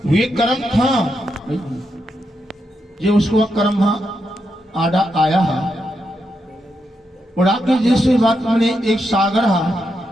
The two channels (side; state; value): both; normal; correlation 0.83